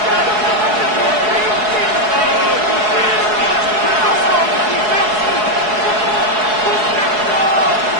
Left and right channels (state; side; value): late; left; 4.7 ms